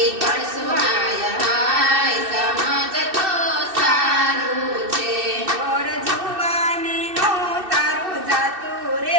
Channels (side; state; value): left; late; 2.6 ms